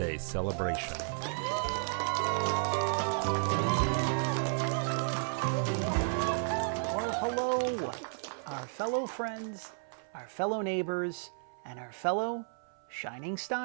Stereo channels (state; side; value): silent; left; 56 dB below the other